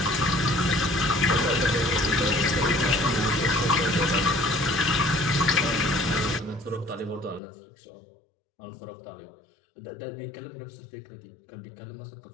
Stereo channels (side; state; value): right; drops out; at 7.4 s